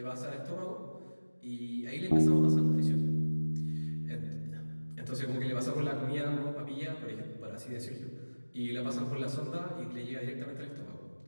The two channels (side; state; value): both; inverted; correlation -1.00